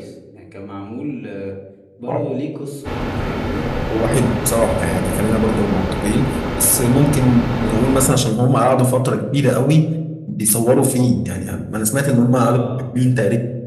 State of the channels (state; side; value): identical; both; correlation 1.00